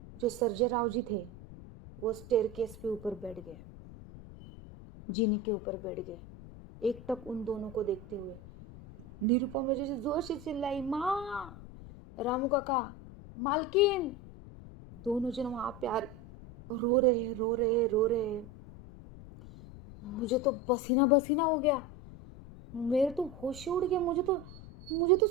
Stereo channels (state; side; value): noise; left; rumble, 16 dB below the sound